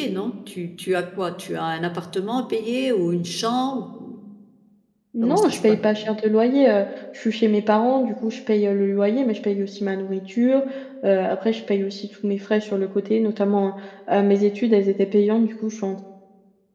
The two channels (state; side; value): identical; both; correlation 1.00